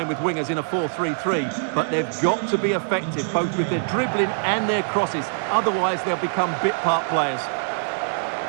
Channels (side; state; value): left; silent; digital silence